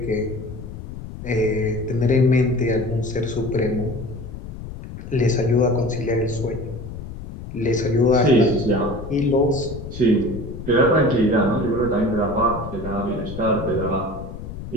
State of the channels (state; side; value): noise; left; rumble, 10 dB below the sound